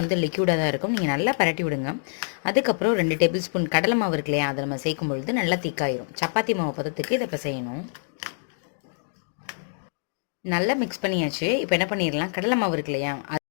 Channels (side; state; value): right; silent; digital silence